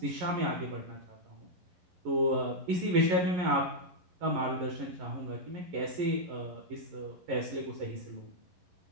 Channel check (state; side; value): late; left; 11 ms